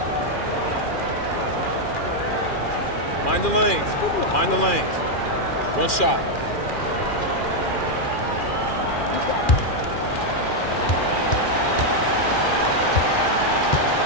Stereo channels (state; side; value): late; right; 2.4 ms